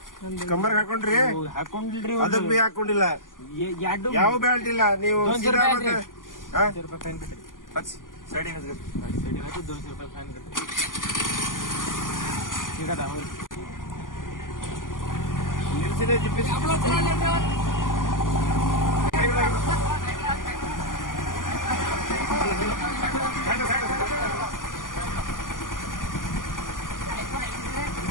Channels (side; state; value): right; late; 0.89 ms